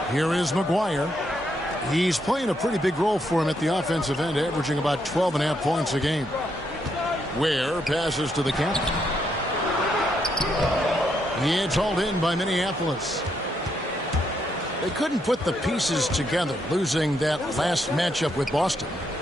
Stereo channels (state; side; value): normal; both; correlation 0.77